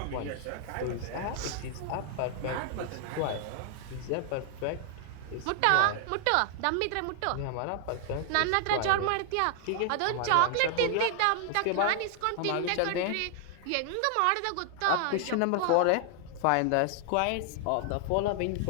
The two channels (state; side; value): different; both; correlation 0.00